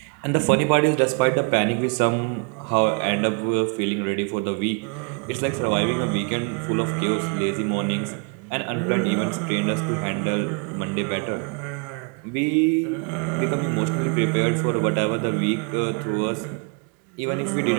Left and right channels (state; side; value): quieter; left; 35.9 dB